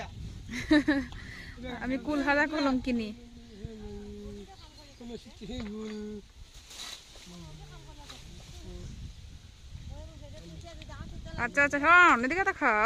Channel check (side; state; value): both; identical; correlation 1.00